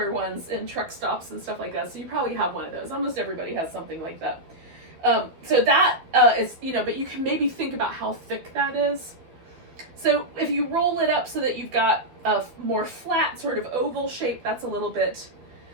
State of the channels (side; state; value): left; late; 12 ms